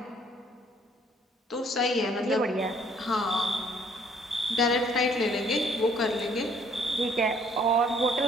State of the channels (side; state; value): both; normal; correlation 0.62